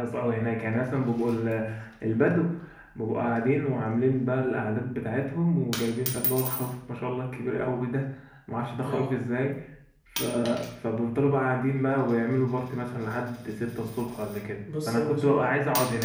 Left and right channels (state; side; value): identical; both; correlation 1.00